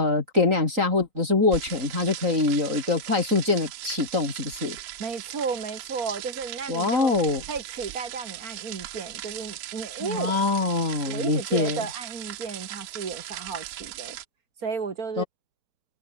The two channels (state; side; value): late; left; 3.9 ms